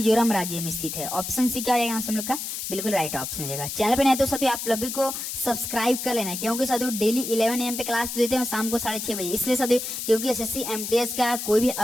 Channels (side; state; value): left; noise; hiss, 5 dB below the sound